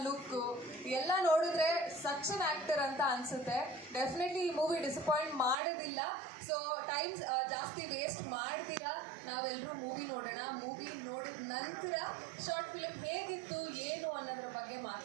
ಲುಕ್ಕು ಎಲ್ಲ ನೋಡಿದ್ರೆ ಸಚ್ ಅನ್ ಆ್ಯಕ್ಟರ್ ಅಂತ ಅನಿಸುತ್ತೆ. ಡೆಫಿನೆಟ್ಲಿ ಈ ಮೂವಿ ಡಿಸಪಾಯಿಂಟ್ ಮಾಡೋದಿಲ್ಲ. ಸೊ ಟೈಮ್ಸ್ ಜಾಸ್ತಿ ವೇಸ್ಟ್ ಮಾಡ್ತೀರಾ, ನಾವೆಲ್ಲರೂ ಮೂವಿ ನೋಡೋಣ. ಮೂವಿ ನೋಡಿದ ನಂತರ ಶಾರ್ಟ್ ಫಿಲ್ಮ್ ಹೇಗಿತ್ತು ಏನು ಅನ್ನೋದ್ರ ಬಗ್ಗೆ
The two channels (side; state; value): left; drops out; at 5.6 s